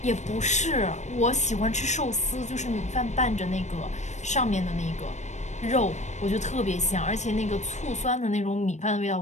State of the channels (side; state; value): right; late; 0.34 ms